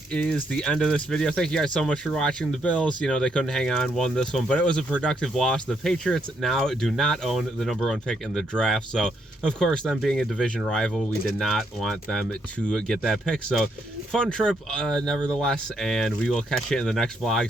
is the end of this video. Thank you guys so much for watching. The Bills, you know, they couldn't hang on, won this one, but it was a productive loss. The Patriots now do not own the #1 pick in the draft. So, of course, them being a division rival, we did not want them to get that pick. So, fun trip, nevertheless, and we will catch you in the next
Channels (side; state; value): both; normal; correlation 0.75